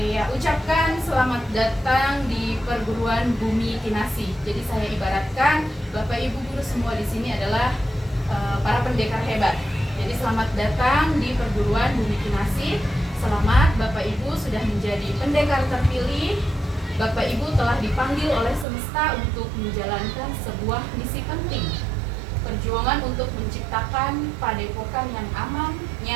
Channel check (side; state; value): left; drops out; at 18.7 s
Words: ucapkan selamat datang di perguruan Bumi Kinasi. Jadi saya ibaratkan Bapak Ibu guru semua di sini adalah para pendekar hebat. Jadi selamat datang di perguruan Bumi Kinasi. Selamat Bapak Ibu sudah menjadi pendekar terpilih. Bapak Ibu telah dipanggil oleh semesta untuk menjalankan sebuah misi penting. Perjuangan untuk menciptakan padepokan yang aman,